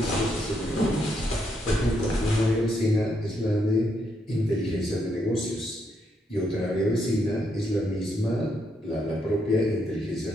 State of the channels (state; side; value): normal; both; correlation 0.77